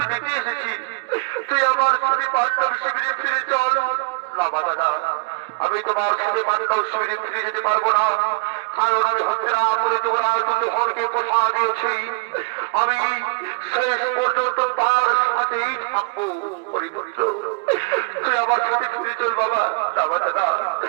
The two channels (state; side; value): quieter; left; 31.8 dB